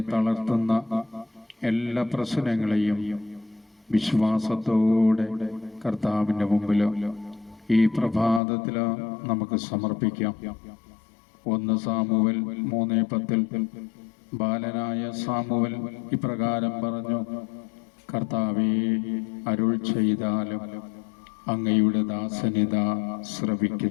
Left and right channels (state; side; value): drops out; right; at 8.4 s